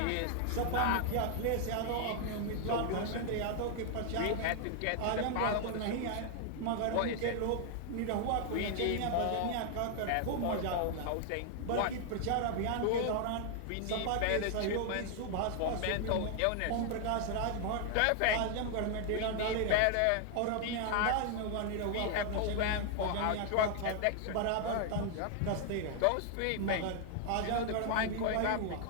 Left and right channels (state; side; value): different; both; correlation 0.00